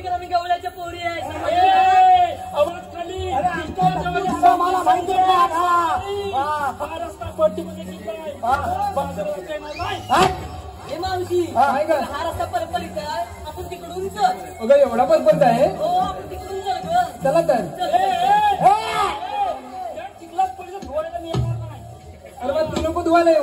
करा मी गवल्याच्या पोरी आहे आवाज खाली मला माहिती हा रस्ता पट्टीमध्ये गेलाय बाजारात येणार नाही हे मावशी काय ग हा रस्ता परपरीत आहे आपण तिकडून चल अगं एवढा परपंच आहे हो आपण तिकडून चल ग चला तर चिखलात पडलं धुवायला मी येणार नाही अरे बा तू नको धुवायला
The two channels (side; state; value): both; identical; correlation 1.00